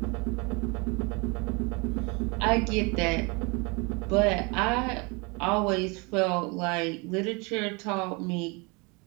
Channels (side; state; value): left; quieter; 29.3 dB